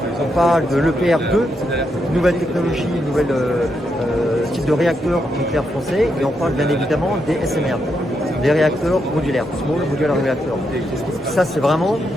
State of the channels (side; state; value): both; normal; correlation 0.81